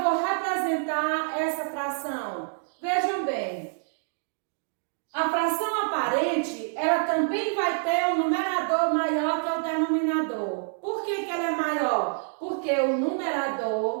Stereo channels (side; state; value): left; silent; digital silence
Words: vou representar essa fração? Vejam bem, a fração aparente, ela também vai ter um numerador maior que o denominador. Por que ela é maior? Porque o